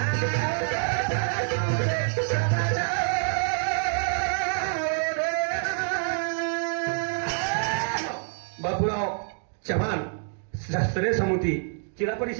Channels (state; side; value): silent; left; 57 dB below the other